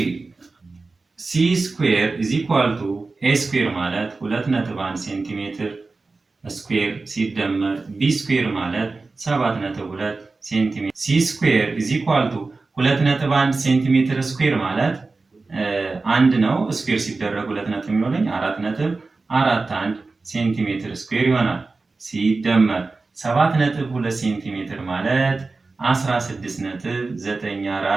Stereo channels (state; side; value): quieter; left; 3.8 dB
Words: ሲ ስኩዌር ኢዝ ኢኳል ቱ ኤ ስኩዌር ማለት 2.1 ሴንቲሜትር ስኩዌር ሲደመር ቢ ስኩዌር ማለት 7.2 ሴንቲሜትር። ሲ ስኩዌር ኢዝ ኢኳል ቱ 2.1 ሴንቲሜትር ስኩዌር ማለት አንድ ነው። ስኩዌር ሲደረግ 2 ነጥብ የሚሆነኝ 4.41 ሴንቲሜትር ስኩዌር ይሆናል። ሲደመር 7.2 ሴንቲሜትር ማለት